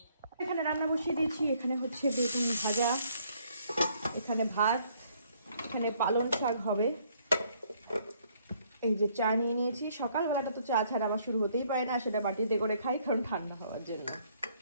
এখানে রান্না বসিয়ে দিয়েছি, এখানে হচ্ছে বেগুন ভাজা, এখানে ভাত, এখানে পালং শাক হবে, এই যে চা নিয়ে নিয়েছি। সকালবেলাটা তো চা ছাড়া আমার শুরু হতেই পারে না, সেটা বাটিতে করে খাই কারণ ঠান্ডা হওয়ার জন্য।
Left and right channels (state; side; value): inverted; both; correlation -0.66